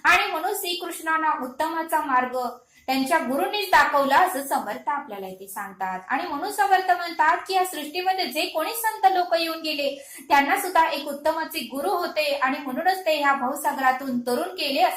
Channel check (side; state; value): both; identical; correlation 1.00